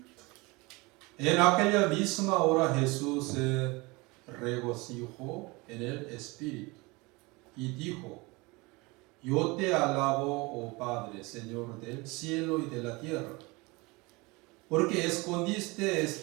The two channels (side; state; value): left; quieter; 24.9 dB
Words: En aquella misma hora Jesús se regocijó en el Espíritu y dijo: Yo te alabo, oh Padre, Señor del cielo y de la tierra, porque escondiste